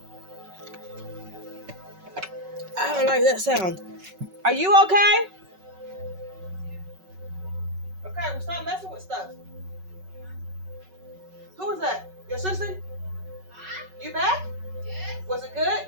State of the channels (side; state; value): left; late; 5.3 ms